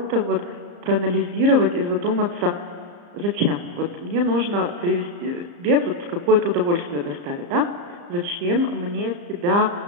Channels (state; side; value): late; left; 34 ms